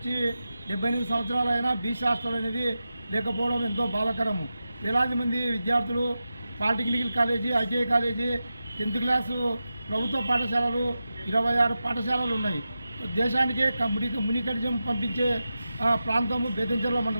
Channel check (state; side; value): inverted; both; correlation -0.91